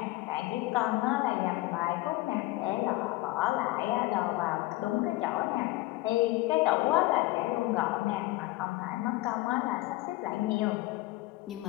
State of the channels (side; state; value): right; quieter; 19.3 dB